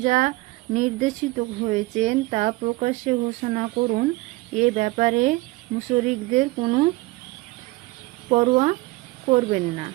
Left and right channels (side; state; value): left; quieter; 21.3 dB